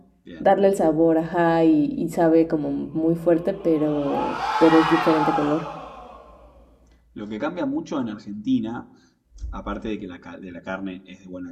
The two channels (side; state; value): both; identical; correlation 1.00